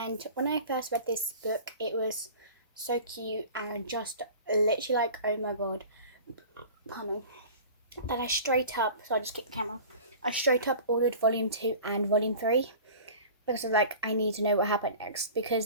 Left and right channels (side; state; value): both; inverted; correlation -0.39